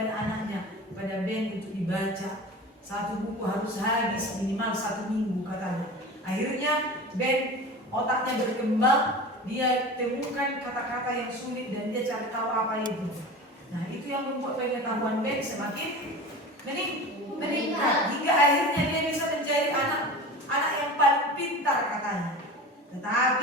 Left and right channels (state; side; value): normal; both; correlation 0.34